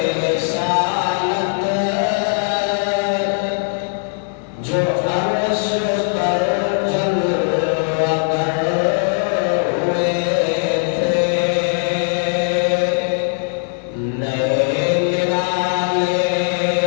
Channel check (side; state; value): right; silent; 66 dB below the other